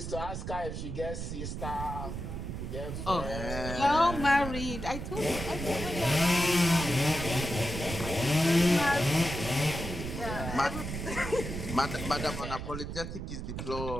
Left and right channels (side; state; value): right; noise; rumble, 6 dB below the sound